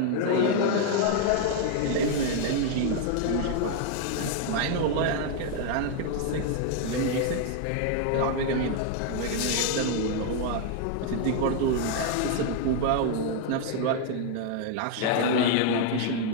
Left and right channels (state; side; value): different; both; correlation 0.00